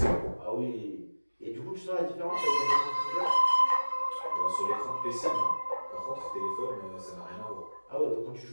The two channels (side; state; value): both; inverted; correlation -1.00